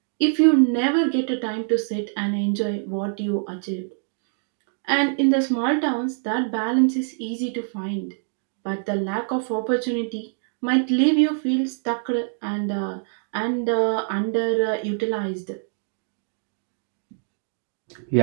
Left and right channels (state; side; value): silent; left; digital silence